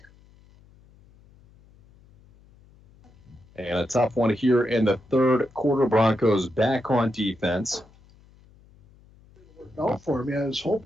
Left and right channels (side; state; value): left; noise; hum, 27 dB below the sound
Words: And a tough one here in the third quarter. Broncos back on defense. Out for me. I was